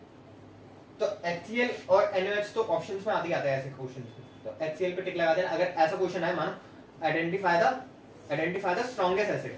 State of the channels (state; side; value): identical; both; correlation 1.00